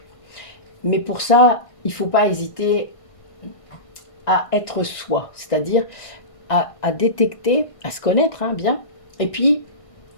Mais pour ça, il ne faut pas hésiter à être soi, c'est-à-dire à détecter, à se connaître hein, bien, et puis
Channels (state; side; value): late; right; 1.5 ms